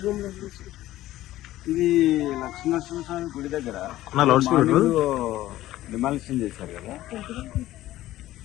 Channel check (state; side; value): quieter; right; 15.1 dB